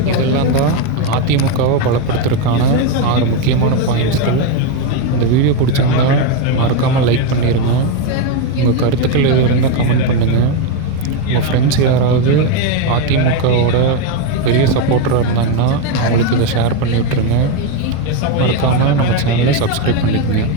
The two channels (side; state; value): both; different; correlation 0.03